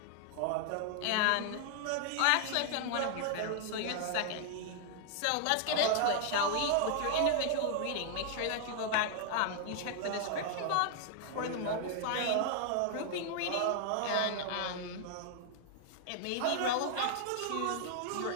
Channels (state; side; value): different; both; correlation 0.00